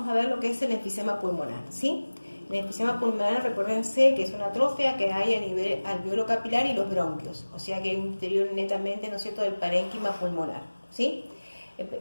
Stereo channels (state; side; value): inverted; both; correlation -1.00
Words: a ver lo que es el enfisema pulmonar, ¿sí? El enfisema pulmonar, recuérdense que es una atrofia que hay a nivel alveolo capilar y los bronquios, o sea que hay un interior netamente, ¿no es cierto?, del parénquima pulmonar, ¿sí?